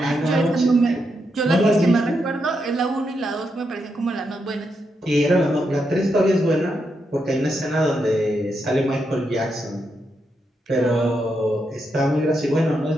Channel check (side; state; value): both; normal; correlation 0.82